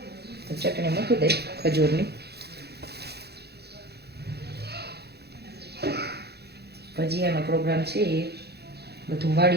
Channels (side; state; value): left; late; 0.48 ms